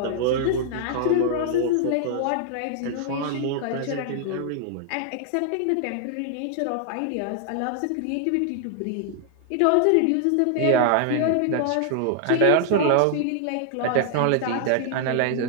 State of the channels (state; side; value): different; both; correlation 0.00